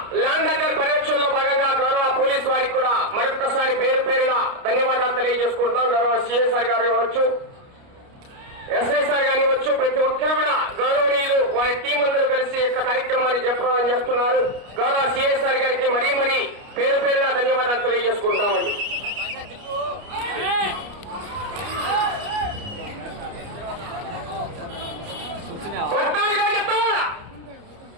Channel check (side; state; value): left; late; 29 ms